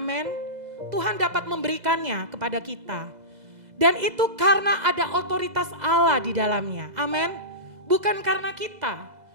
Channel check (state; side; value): late; left; 2.0 ms